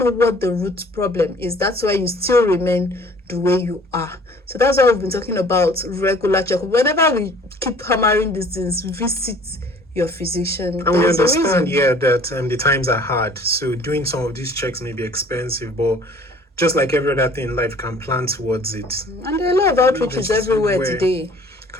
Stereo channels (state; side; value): normal; both; correlation 0.52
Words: what the root problem is. That's why you still remain the way you are. So that's why we've been talking about regular checkup. Whenever we keep hammering these things, visit your physician. And we There's a understand, reason. that the times are hard. So doing some of these checks may be expensive, but just like every other thing in life, can plan towards it. And there are a lot of outreaches everywhere today.